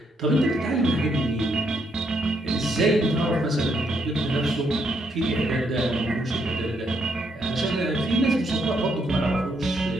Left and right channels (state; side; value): normal; both; correlation 0.75